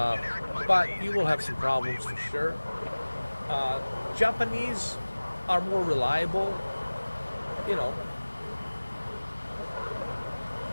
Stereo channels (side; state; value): both; inverted; correlation -1.00